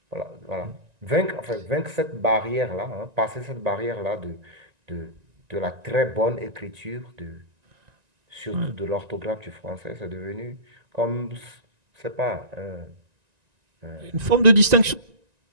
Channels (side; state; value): left; late; 1.9 ms